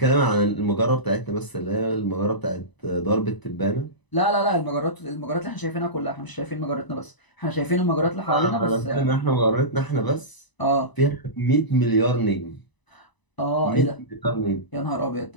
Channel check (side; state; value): right; late; 1.0 ms